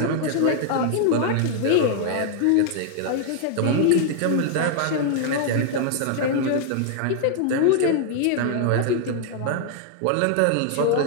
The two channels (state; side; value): different; both; correlation 0.00